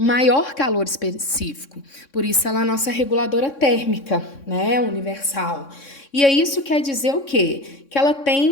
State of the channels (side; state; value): right; late; 3.6 ms